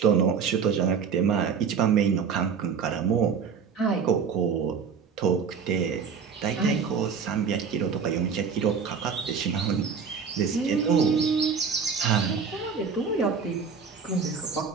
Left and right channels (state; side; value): quieter; left; 6.1 dB